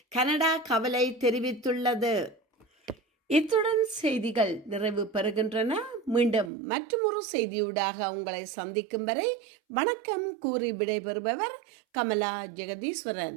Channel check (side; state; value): left; drops out; at 6.5 s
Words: கனடா கவலை தெரிவித்துள்ளது. இத்துடன் செய்திகள் நிறைவு பெறுகின்றன. மீண்டும் மற்றொரு செய்தியூடாக உங்களை சந்திக்கும் வரை வணக்கம் கூறி விடைபெறுபவர் கமலா